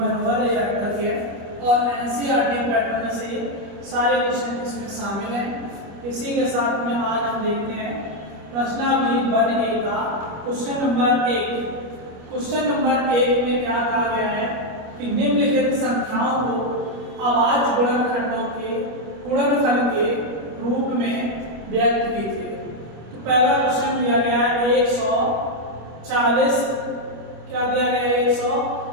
यात्रा है और NCERT पैटर्न में से सारे क्वेश्चन इसमें शामिल हैं। इसी के साथ में आज हम देखते हैं प्रश्नावली बन ए का क्वेश्चन नंबर 1। क्वेश्चन नंबर 1 में क्या कहा गया है कि निम्नलिखित संख्याओं को अभाज्य गुणनखंडों के गुणनफल के रूप में व्यक्त कीजिए। तो पहला क्वेश्चन दिया गया है 140। क्या दिया गया है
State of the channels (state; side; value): late; left; 25 ms